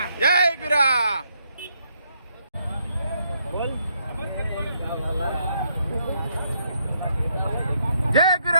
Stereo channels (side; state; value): both; inverted; correlation -0.74